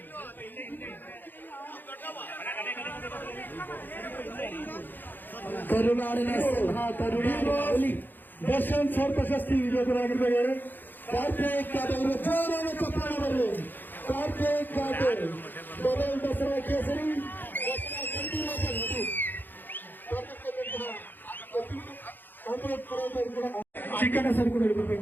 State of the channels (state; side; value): late; right; 0.090 ms